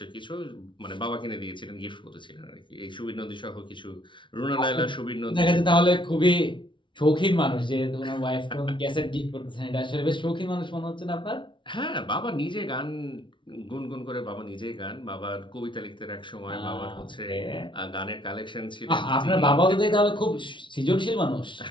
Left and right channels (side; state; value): right; late; 0.24 ms